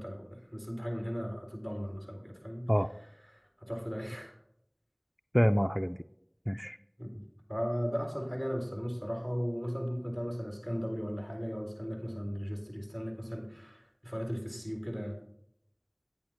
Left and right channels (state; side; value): identical; both; correlation 1.00